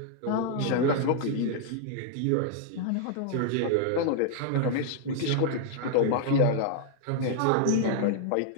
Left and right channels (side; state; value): both; different; correlation 0.00